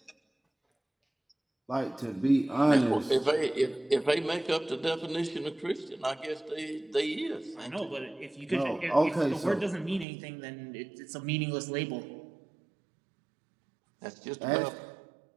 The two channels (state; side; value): drops out; left; at 10.1 s